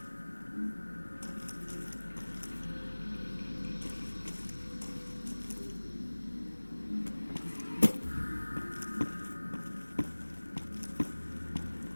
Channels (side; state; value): both; inverted; correlation -1.00